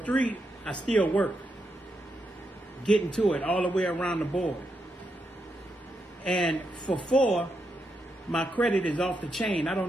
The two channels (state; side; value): normal; both; correlation 0.83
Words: I still work, getting to it all the way around the board. And for four, my credit is off the chain. I